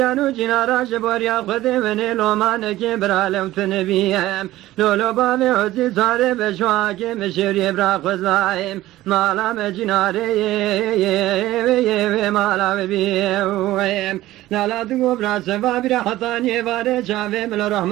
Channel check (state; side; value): quieter; left; 15.9 dB